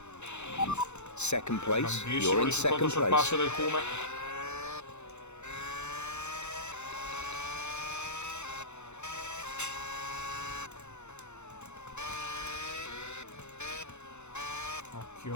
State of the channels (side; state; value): right; late; 0.82 ms